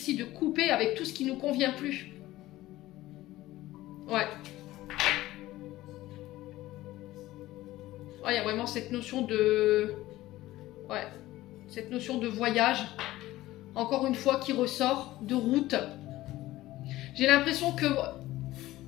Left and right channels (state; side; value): quieter; right; 16.5 dB